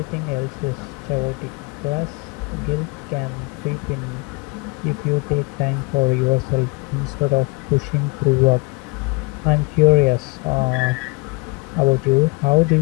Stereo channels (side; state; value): right; quieter; 28.5 dB